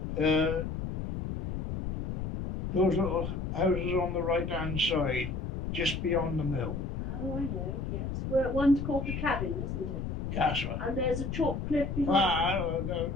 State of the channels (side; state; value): left; noise; rumble, 4 dB below the sound